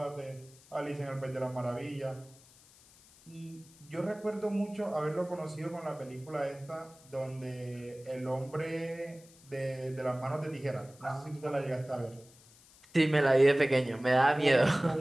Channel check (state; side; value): noise; left; hiss, 25 dB below the sound